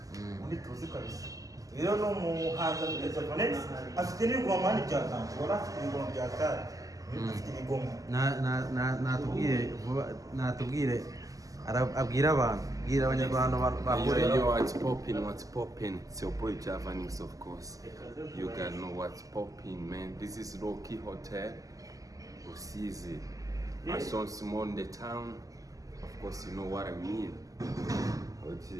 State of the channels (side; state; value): left; late; 0.17 ms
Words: Undi tuzi kabisa. Rero no muhanzi wa Javanex afite n'ibigomani bya tantu. Wala afite ibigomani bya tari. Afite ibigomani. Natubwire abwira abantu, bwira abanyarwanda bakore. Yo, what's poppin'? It's your boy Javanix, of course. You guys know what's poppin', man. This is Low-Key Hotel, Rusizi. I saw small in the town. Of course, you know what I mean.